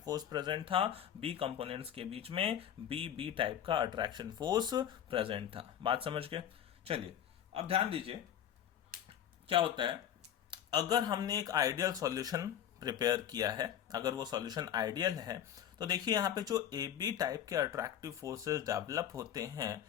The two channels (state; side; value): quieter; right; 10.0 dB